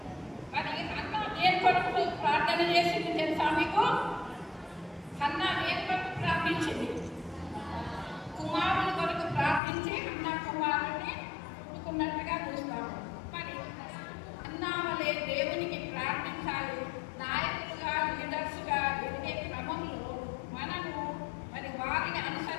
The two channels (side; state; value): right; drops out; at 9.6 s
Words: మరి అన్న దేని కొరకు ప్రార్థన చేసింది తెలుసా మీకు? అన్న దేని కొరకు ప్రార్థించింది? కుమారుని కొరకు ప్రార్థించి అన్న కుమారుని పుట్టుకున్నట్టుగా చూస్తాము. మరి అన్న వలె దేవునికి ప్రార్థించాలి. నాయకులుగా, లీడర్స్గా ఎదిగే క్రమంలో మనము మరి వారిని